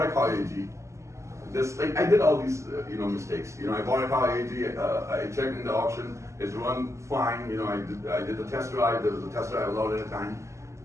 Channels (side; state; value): left; late; 0.14 ms